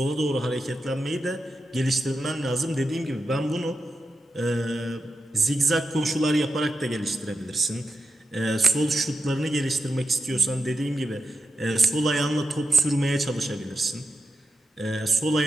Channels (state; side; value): normal; both; correlation 0.89